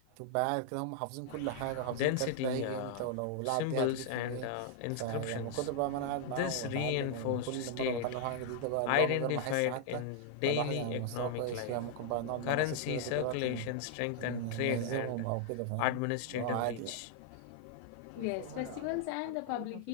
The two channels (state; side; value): different; both; correlation 0.00